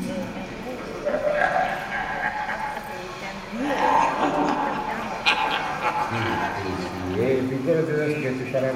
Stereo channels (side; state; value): both; identical; correlation 1.00